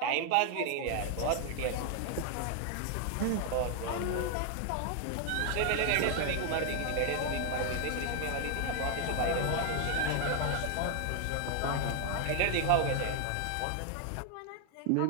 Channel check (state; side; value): different; both; correlation 0.00